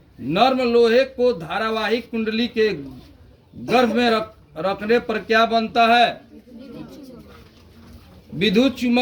नर्म लोहे को धारावाहिक कुंडली के गर्भ में रखने पर क्या बनता है? विद्युत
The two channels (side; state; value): both; identical; correlation 1.00